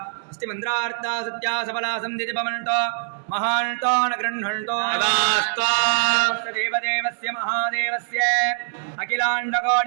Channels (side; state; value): left; silent; 63 dB below the other